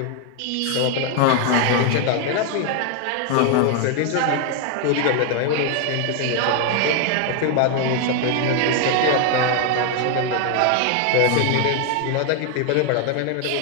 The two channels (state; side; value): different; both; correlation 0.01